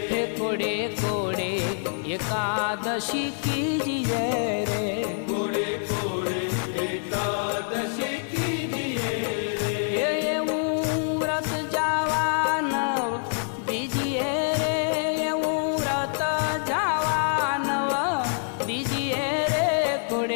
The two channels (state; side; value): silent; right; digital silence